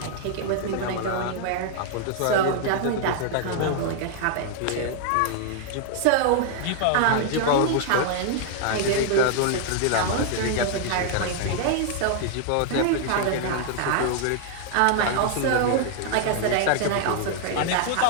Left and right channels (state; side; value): different; both; correlation 0.00